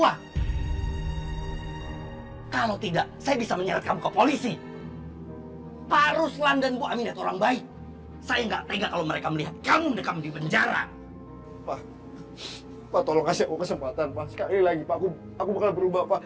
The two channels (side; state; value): both; identical; correlation 1.00